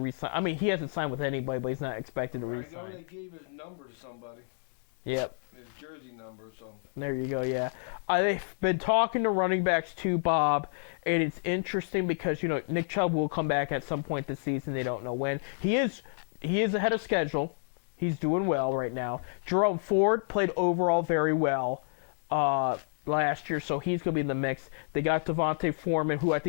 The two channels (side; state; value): right; silent; digital silence